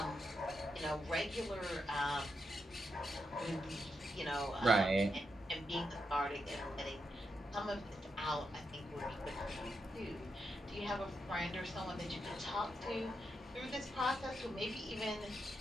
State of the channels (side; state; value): both; normal; correlation 0.84